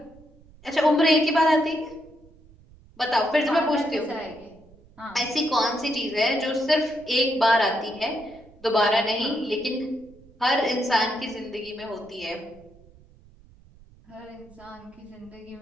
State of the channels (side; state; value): right; noise; rumble, 25 dB below the sound